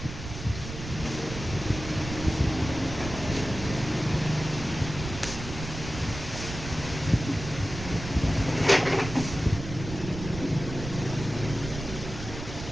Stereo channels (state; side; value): noise; right; rumble, 9 dB below the sound